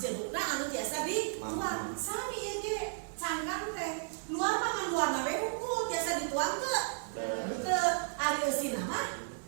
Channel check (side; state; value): left; silent; digital silence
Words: anu tiasa dituang. Sami ieu ge cangkang teh. Luar mah ngan luarna we wungkul tiasa dituang teu? Teu. Ari eusina mah.